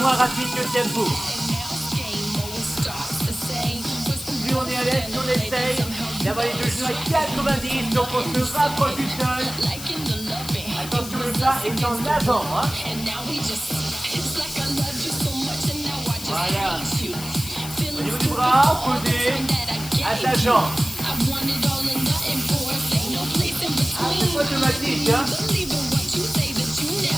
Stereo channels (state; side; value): noise; left; hiss, 11 dB below the sound